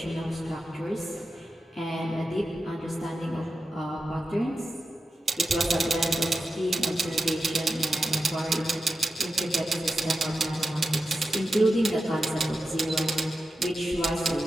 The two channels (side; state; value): both; normal; correlation 0.90